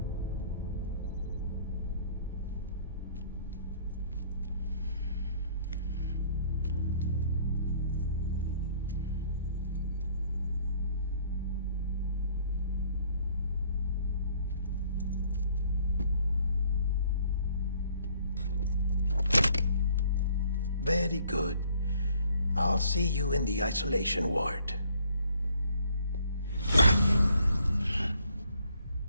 Very good. I'll see you in the isolation ward.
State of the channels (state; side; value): inverted; both; correlation -0.61